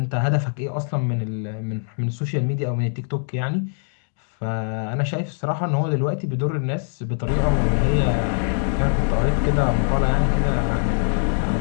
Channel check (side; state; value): right; silent; 63 dB below the other